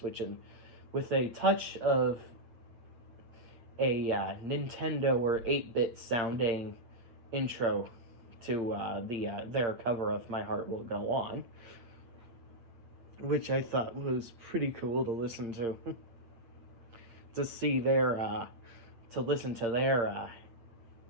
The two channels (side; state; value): left; late; 8.7 ms